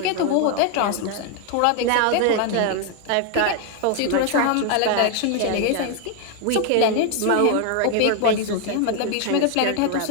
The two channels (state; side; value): different; both; correlation 0.01